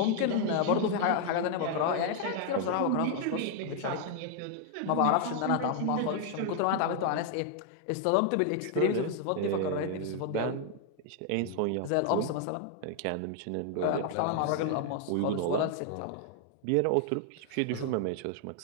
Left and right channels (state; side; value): different; both; correlation 0.00